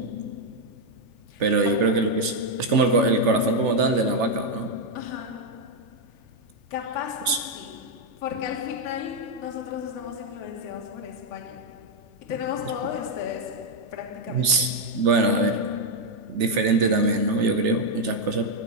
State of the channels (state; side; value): late; left; 3.4 ms